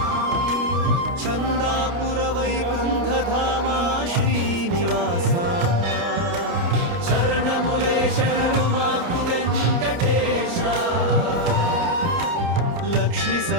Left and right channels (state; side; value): late; left; 29 ms